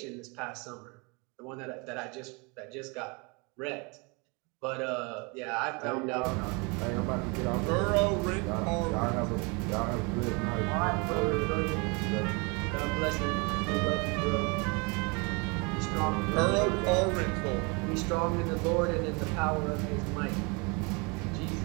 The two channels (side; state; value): left; quieter; 30.1 dB